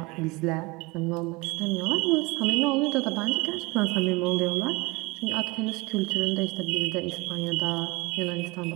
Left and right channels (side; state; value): left; quieter; 24.8 dB